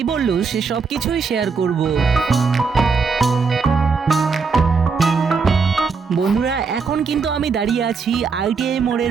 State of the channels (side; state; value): left; quieter; 5.0 dB